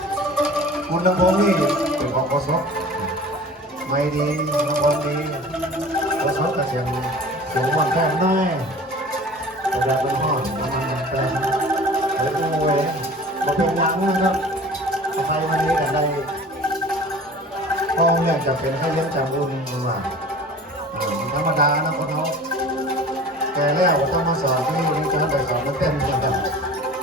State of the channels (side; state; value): both; normal; correlation 0.42